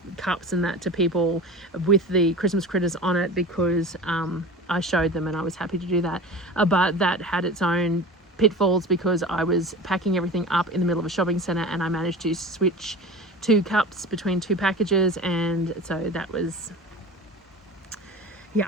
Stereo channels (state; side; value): normal; both; correlation 0.35